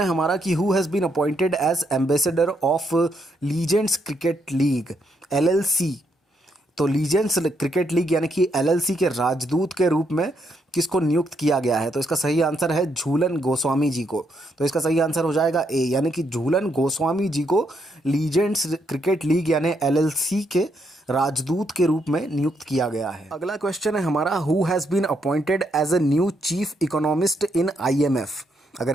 हमारा कि who has been appointed as ambassador of legends cricket league LLC। तो लीजेंड्स क्रिकेट लीग यानी कि LLC के राजदूत के रूप में किसको नियुक्त किया गया है? तो इसका सही आंसर है झूलन गोस्वामी जी को। तो इसका सही आंसर हो जाएगा ए, यानी कि झूलन गोस्वामी जी को लीजेंड्स क्रिकेट लीग यानी LLC के राजदूत के रूप में नियुक्त किया गया है। अगला क्वेश्चन है हमारा who has been appointed as a new chief economist in IMF। अगर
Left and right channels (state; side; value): normal; both; correlation 0.76